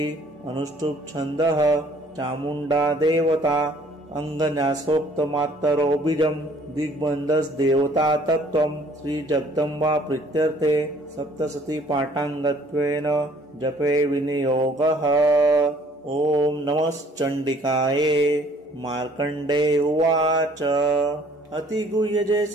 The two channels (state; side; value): normal; both; correlation 0.58